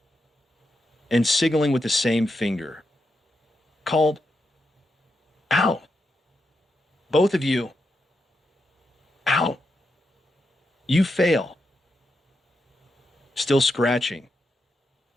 and signaling with the same finger, called, Out! Both of you, out! You fail. Still scratching.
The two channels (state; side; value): normal; both; correlation 0.85